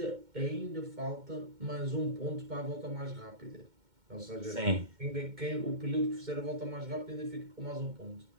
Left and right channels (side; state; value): left; late; 2.2 ms